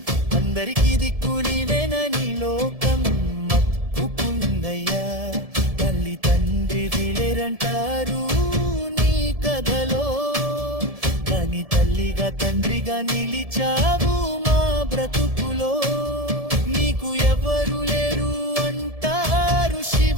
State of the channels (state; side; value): late; left; 1.7 ms